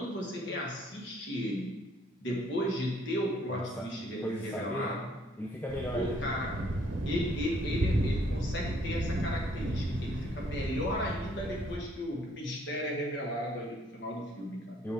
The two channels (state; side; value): normal; both; correlation 0.64